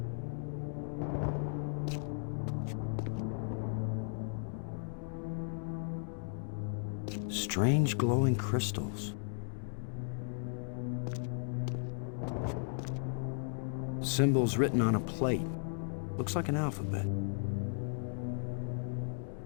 Strange glowing crystals. Symbols written on a plate. Looks like an alphabet.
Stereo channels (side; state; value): right; silent; digital silence